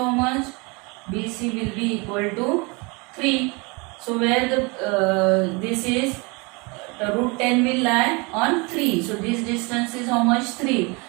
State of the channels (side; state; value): left; quieter; 28.5 dB